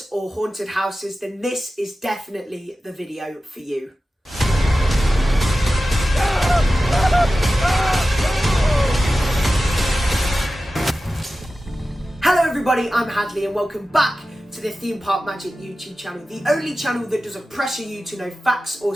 or haunted houses, then this is definitely the video for you. Hello everybody, I'm Hadley and welcome back to the Theme Park Magic YouTube channel, the only channel that doesn't pressure you to know facts or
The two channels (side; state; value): both; normal; correlation 0.94